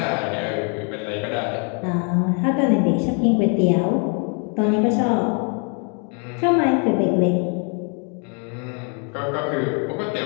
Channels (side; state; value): right; quieter; 38.2 dB